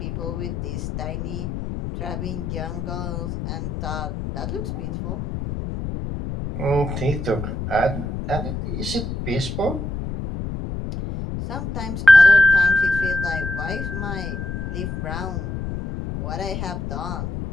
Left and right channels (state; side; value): noise; left; rumble, 5 dB below the sound